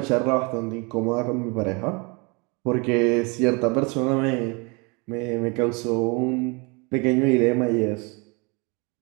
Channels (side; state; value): left; quieter; 29.8 dB